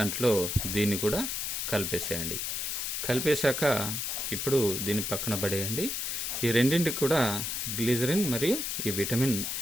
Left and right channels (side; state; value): left; noise; hiss, 2 dB below the sound